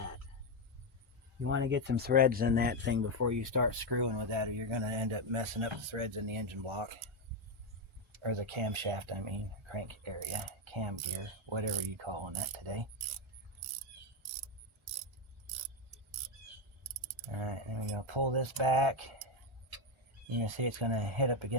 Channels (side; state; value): both; normal; correlation 0.07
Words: You want to get some threads in that thing before you start screwing with that, or you're going to end up messing up the threads in the engine block. Or the camshaft, I mean, crank area, cam gear, whatever you calling that today. Alright, then we're going to pull this back. You can see it's going to hit up